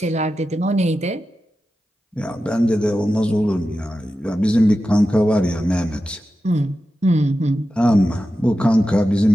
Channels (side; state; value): both; normal; correlation 0.92